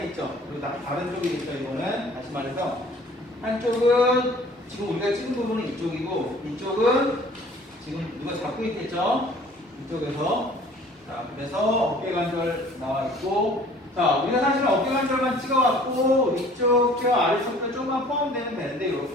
그리고 다른 쪽이겠죠. 이거는 다시 말해서 한쪽은 지금 우리가 찍은 부분은 이쪽이고 이쪽은 지금 누가 잡고 있겠죠. 이쪽에서. 자, 그래서 어깨관절 나와 있고, 자, 우리가 사실은 어깨관절만 찍어갖고 위쪽 뼈, 아래쪽 뼈 조금만 포함되면 되는데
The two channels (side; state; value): both; normal; correlation 0.51